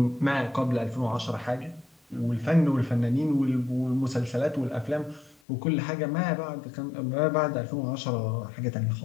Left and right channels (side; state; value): right; drops out; at 5.4 s